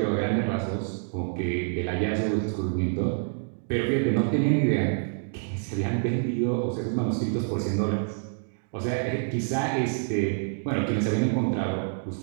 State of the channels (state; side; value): silent; left; digital silence